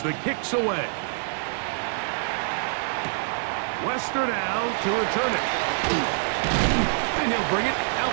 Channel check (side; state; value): left; silent; digital silence